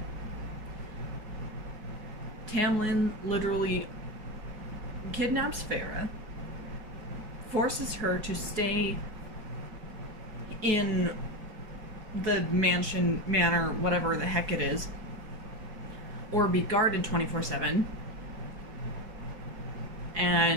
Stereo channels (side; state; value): left; late; 4.7 ms